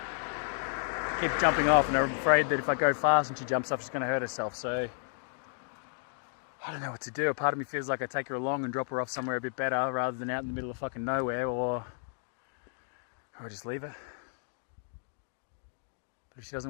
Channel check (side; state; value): right; silent; 56 dB below the other